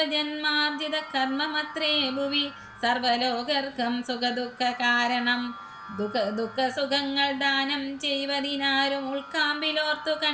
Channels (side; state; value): both; identical; correlation 1.00